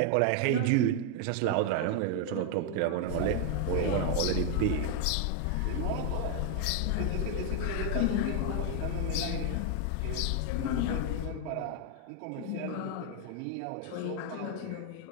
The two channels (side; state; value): both; different; correlation 0.00